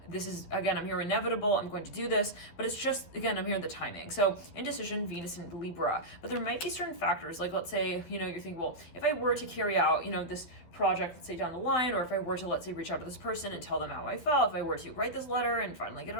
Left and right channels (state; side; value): late; right; 12 ms